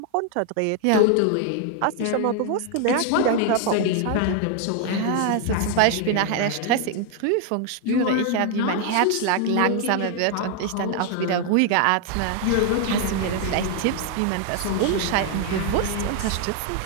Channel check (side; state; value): both; different; correlation 0.00